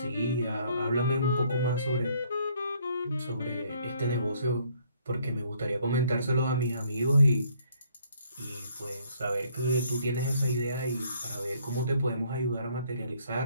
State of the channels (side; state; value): both; inverted; correlation -0.65